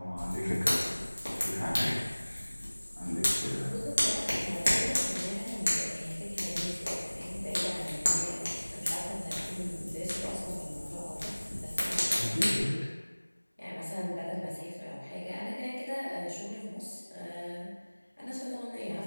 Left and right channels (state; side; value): inverted; both; correlation -1.00